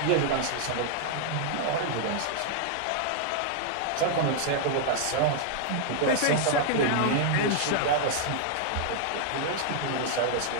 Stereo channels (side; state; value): both; different; correlation 0.00